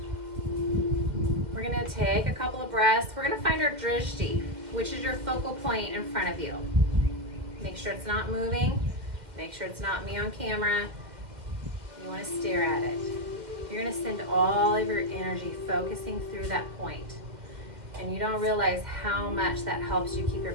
We're going to take a couple of breaths. We're going to find our drishti, which is your focal point in front of you. Make sure it's not moving. Make sure it's not me on camera. You want to stare at it. You're going to send all of your energy focusing through that point. And you don't realize how much that helps you keep your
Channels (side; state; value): left; late; 2.1 ms